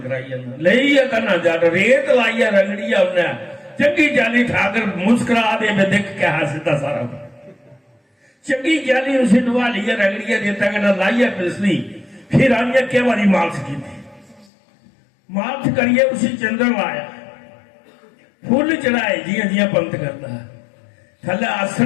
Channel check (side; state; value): right; drops out; at 14.5 s